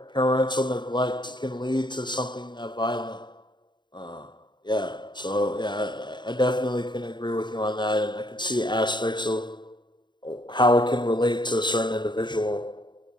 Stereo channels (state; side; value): late; right; 0.22 ms